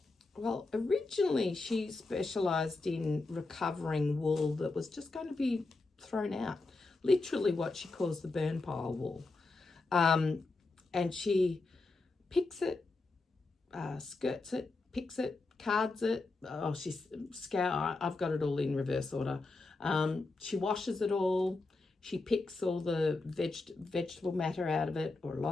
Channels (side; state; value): right; quieter; 3.5 dB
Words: originally she specialized in recovering wool that was just going to be thrown out, literally what she calls the burn pile wool. And she picks it, skirts it, picks it, cards it. Oh, I've got it all in reverse order. She washes it all. She picks all the vegetable matter out of it, or a